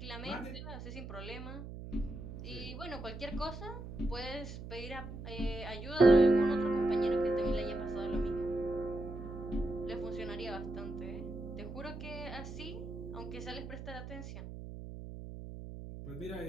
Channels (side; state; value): right; noise; hum, 10 dB below the sound